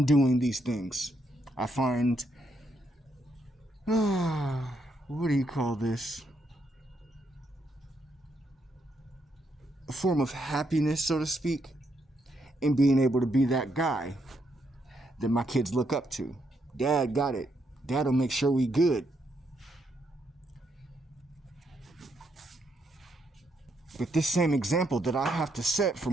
doing these things. I find, what do you call this? A form of happiness, so to speak, in being able to be that guy that my kids look up to. Dad got it. Dad'll make sure we good. But this same example that I have to set for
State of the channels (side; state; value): both; normal; correlation 0.77